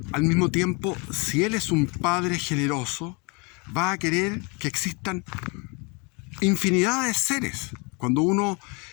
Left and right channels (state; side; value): quieter; right; 29.7 dB